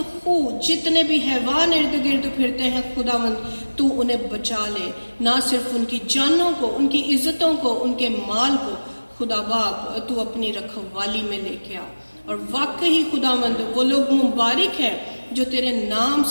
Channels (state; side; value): inverted; both; correlation -1.00